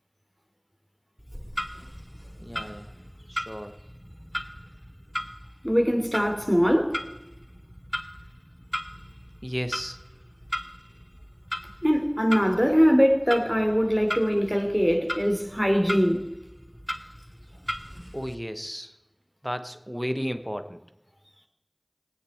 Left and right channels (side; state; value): both; identical; correlation 1.00